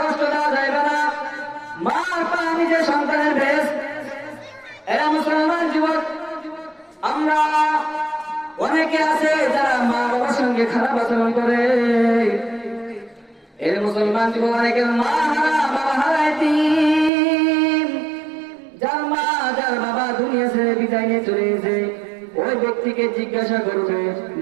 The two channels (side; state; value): left; drops out; at 17.1 s